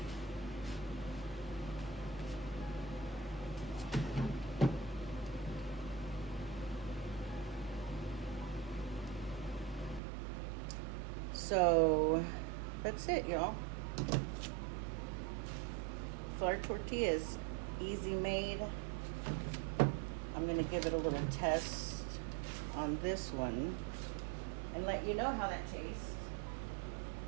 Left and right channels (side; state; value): left; drops out; at 10.0 s